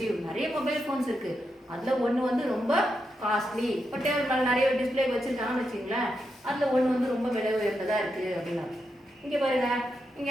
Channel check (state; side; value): normal; both; correlation 0.85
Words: நிறைய மொபைல் ஃபோன்ஸ் இருக்கு அதுல ஒன்று வந்து ரொம்ப காஸ்ட்லி. இப்போ டேபிள் மேலே நிறைய டிஸ்பிளே வச்சிருக்காங்கன்னு வச்சுங்களேன், அதுல ஒன்று வந்து ரொம்ப விலை உயர்ந்ததா இருக்கு அப்படின்னு. இங்க பாருங்க,